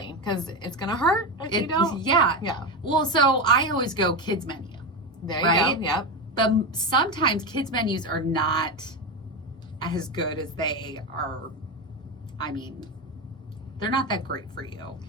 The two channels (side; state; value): both; normal; correlation 0.15